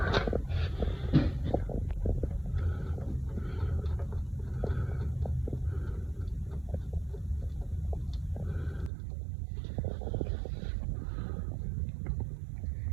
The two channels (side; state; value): left; drops out; at 8.9 s